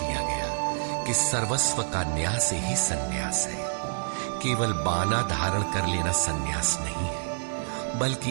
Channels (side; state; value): left; silent; digital silence